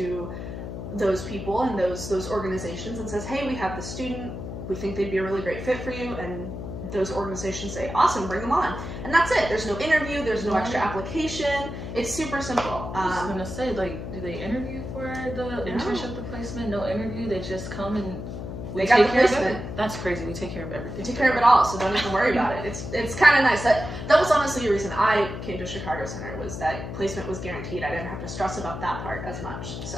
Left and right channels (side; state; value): left; noise; hum, 7 dB below the sound